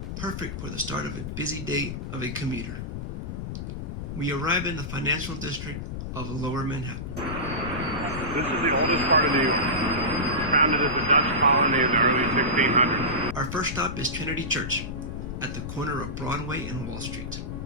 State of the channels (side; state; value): left; noise; rumble, 6 dB below the sound